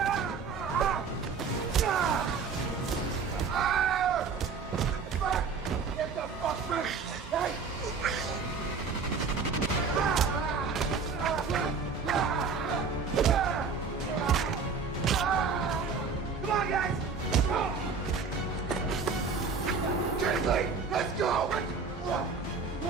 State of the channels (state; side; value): quieter; left; 5.1 dB